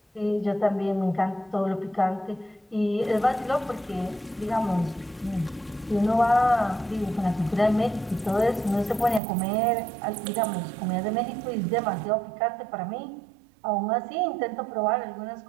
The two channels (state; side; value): drops out; left; at 9.2 s